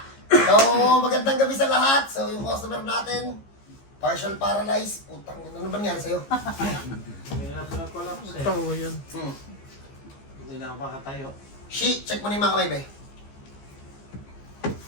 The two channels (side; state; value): right; late; 15 ms